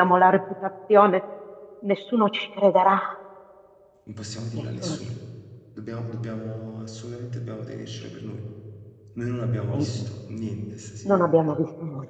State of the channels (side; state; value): both; identical; correlation 1.00